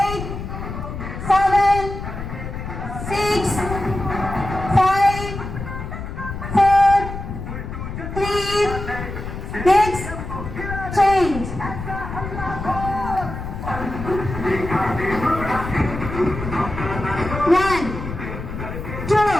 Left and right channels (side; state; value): left; noise; rumble, 7 dB below the sound